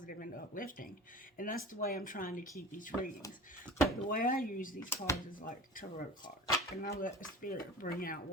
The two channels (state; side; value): normal; both; correlation 0.38